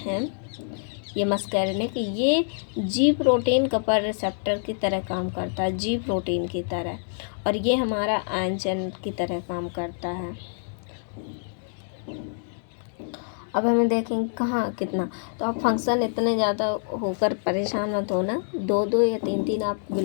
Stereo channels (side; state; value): right; silent; digital silence